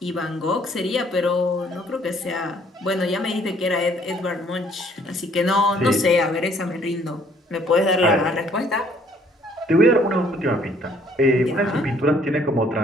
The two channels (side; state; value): both; normal; correlation 0.62